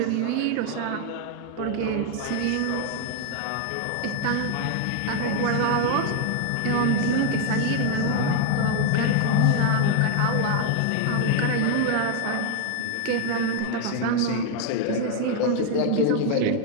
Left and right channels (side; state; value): both; different; correlation 0.00